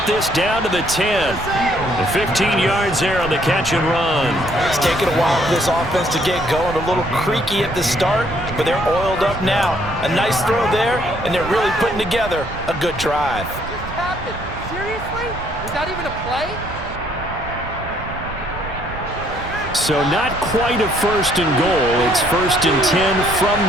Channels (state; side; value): noise; right; rumble, 12 dB below the sound